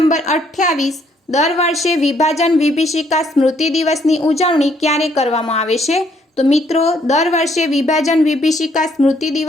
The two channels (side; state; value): both; normal; correlation 0.68